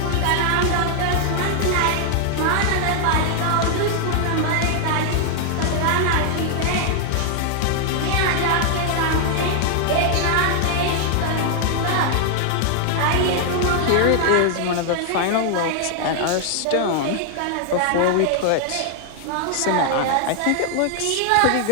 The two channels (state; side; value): different; both; correlation 0.00